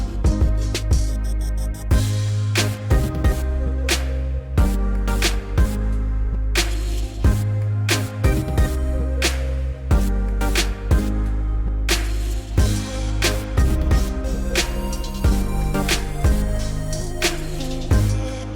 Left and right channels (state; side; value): identical; both; correlation 1.00